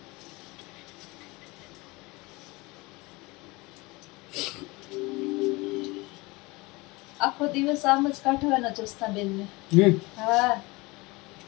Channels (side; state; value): right; quieter; 23.7 dB